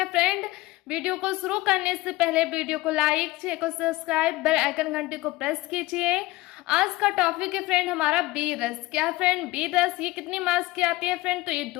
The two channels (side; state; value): right; quieter; 19.8 dB